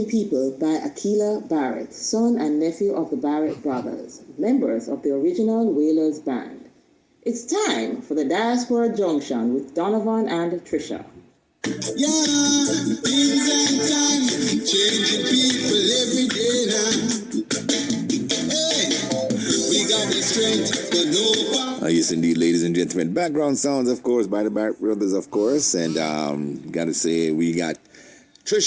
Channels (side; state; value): both; identical; correlation 1.00